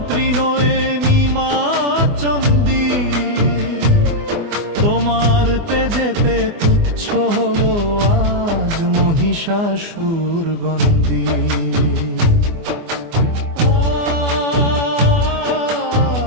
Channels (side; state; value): left; late; 24 ms